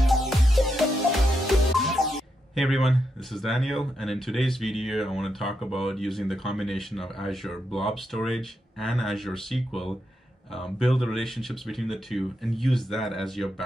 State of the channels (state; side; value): normal; both; correlation 0.83